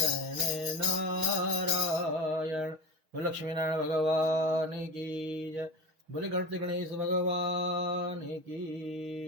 नारायण। बोल लक्ष्मी नारायण भगवान की जय। बोले गणपति गणेश भगवान की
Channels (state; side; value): late; left; 6.4 ms